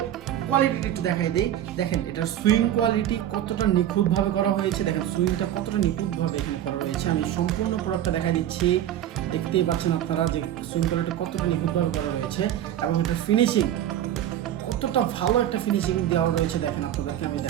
কোয়ালিটিটা একটু দেখাই দিই। দেখেন এটার সুইং কোয়ালিটি কতটা নিখুঁতভাবে করা হয়েছে, দেখেন সুইংটা কতটা নিখুঁতভাবে এখানে করা রয়েছে। আমি সম্পূর্ণ প্রোডাক্টটা দেখাই দিচ্ছি, দেখতেই পাচ্ছেন আপনারা যে সুইং কোয়ালিটি কতটা নিখুঁতভাবে করা রয়েছে এবং এটার ফিনিশিং কতটা ভালো একটা ফিনিশিং দেওয়া রয়েছে। দেখেন আপনাদেরকে আমি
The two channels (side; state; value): left; quieter; 11.6 dB